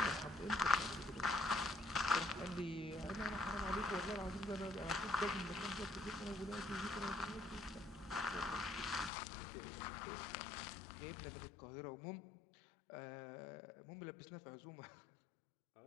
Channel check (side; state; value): right; drops out; at 9.1 s